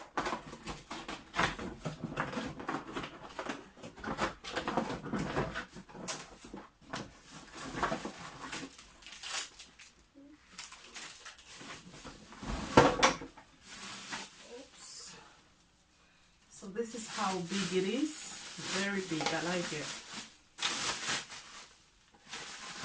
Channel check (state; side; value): identical; both; correlation 1.00